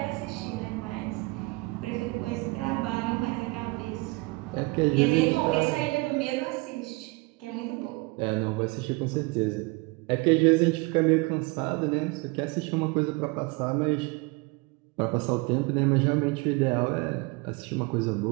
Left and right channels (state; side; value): quieter; left; 25.8 dB